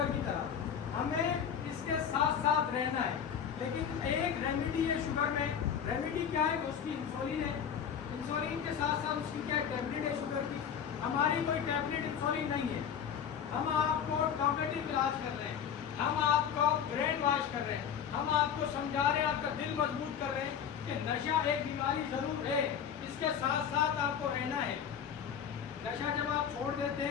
کی طرح۔ ہمیں اس کے ساتھ ساتھ رہنا ہے، لیکن ایک ریمیڈی ہے شوگر میں۔ ریمیڈی کیا ہے؟ اس کی انسولین ہے۔ انسولین کے ساتھ ساتھ اس کی کیا ٹیبلٹ ہے شوگر کی۔ ہماری کوئی ٹیبلٹ انسولین نہیں ہے، ہم آپ کو ٹاپیٹو علاج کر رہے ہیں، ہم آپ کو برین واش کر رہے ہیں، ہم آپ کو سمجھا رہے ہیں، آپ کا دل مضبوط کر رہے ہیں کہ نشہ ایک بیماری ضرور ہے، اس کے ساتھ ساتھ آپ کو رہنا ہے۔ نشہ جب آپ چھوڑ دیتے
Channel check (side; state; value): right; quieter; 8.0 dB